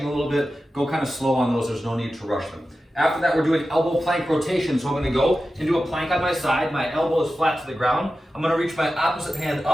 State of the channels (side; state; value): both; normal; correlation 0.93